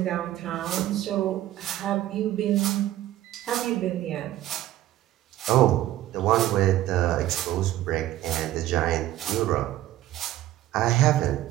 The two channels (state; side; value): quieter; left; 14.1 dB